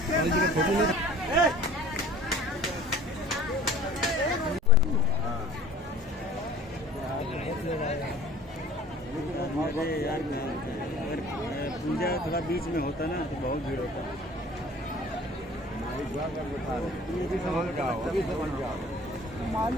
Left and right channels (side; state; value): both; normal; correlation 0.47